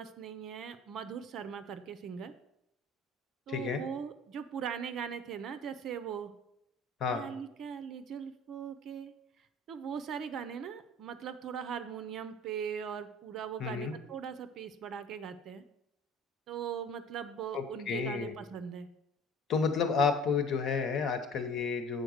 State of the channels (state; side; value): normal; both; correlation 0.45